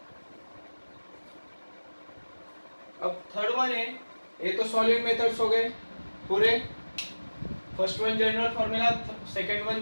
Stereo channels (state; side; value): inverted; both; correlation -1.00